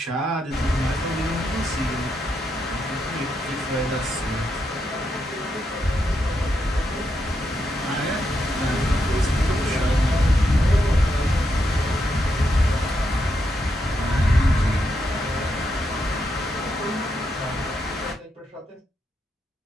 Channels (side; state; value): both; normal; correlation 0.82